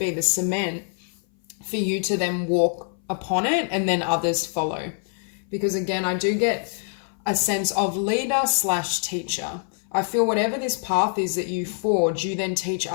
the cement, for you to then walk upon it and then others follow. Because again, I do get a sense of leader/teacher. I feel whatever this path is that you forge, you then teach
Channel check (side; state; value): right; silent; 58 dB below the other